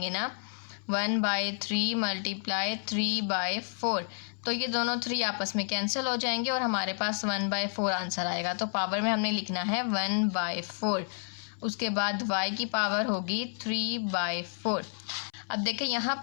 ना, 1/3 मल्टीप्लाई 3/4, तो ये दोनों 3 आपस में कैंसिल हो जाएंगे और हमारे पास 1/4 आंसर आएगा। तो पावर में हमने लिखना है 1/4। उसके बाद y की पावर होगी 3/4। अब देखिए यहाँ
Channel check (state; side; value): silent; right; 57 dB below the other